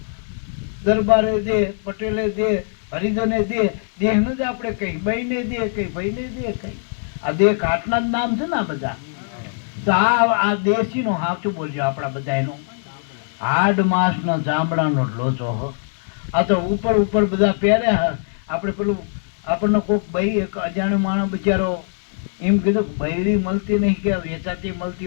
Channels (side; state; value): right; silent; digital silence